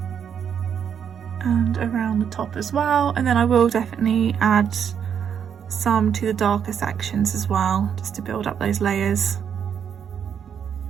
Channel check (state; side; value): quieter; left; 7.9 dB